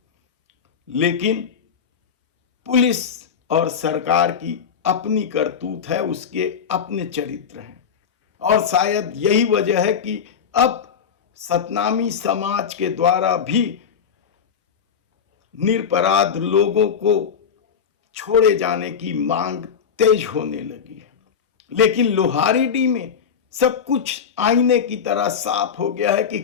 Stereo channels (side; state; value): right; quieter; 7.1 dB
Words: लेकिन पुलिस और सरकार की अपनी करतूत है, उसके अपने चरित्र हैं, और शायद यही वजह है कि अब सतनामी समाज के द्वारा भी निरपराध लोगों को छोड़े जाने की मांग तेज होने लगी है। लेकिन लोहारीडीह में सब कुछ आईने की तरह साफ हो गया है कि